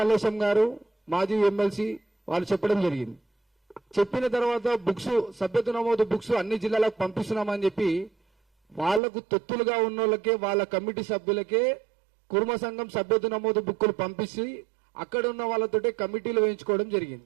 గారు మాజీ ఎమ్మెల్సీ వాళ్ళు చెప్పడం జరిగింది. చెప్పిన తర్వాత సభ్యత్వ నమోదు బుక్స్ అన్ని జిల్లాలకు పంపిస్తున్నామని చెప్పి వాళ్లకు తొత్తులుగా ఉన్న వాళ్ళకే వాళ్ళ కమిటీ సభ్యులకే కుర్మ సంఘం సభ్యత్వ నమోదు బుక్కులు పంపించి అక్కడ ఉన్న వాళ్ళతోటే కమిటీలు వేయించుకోవడం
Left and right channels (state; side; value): drops out; left; at 9.0 s